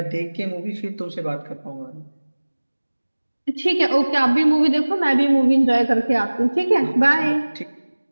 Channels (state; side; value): inverted; both; correlation -1.00